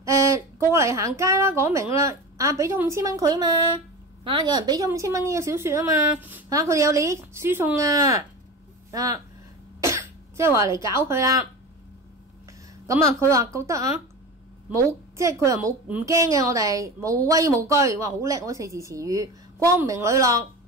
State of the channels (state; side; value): normal; both; correlation 0.29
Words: 過嚟行街啦，講明啦，俾咗5000蚊佢啊嘛，有人俾咗5000蚊呢個小說啊嘛，佢哋有利益輸送即係話嚟搞佢啦。佢話覺得冇，即係佢又冇唔驚嘅，我哋無畏無懼，哇好叻嗰4字詞語，光明磊落